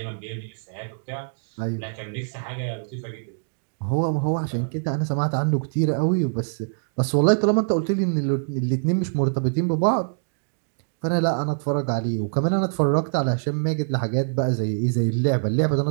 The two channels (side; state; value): left; silent; digital silence